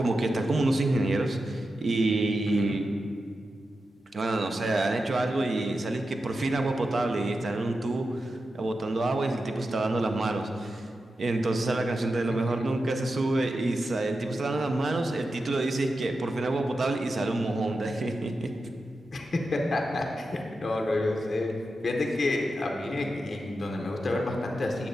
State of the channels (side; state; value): both; normal; correlation 0.90